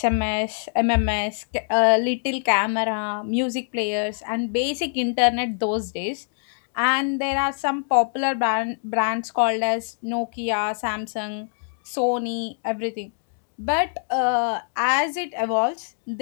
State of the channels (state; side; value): silent; right; digital silence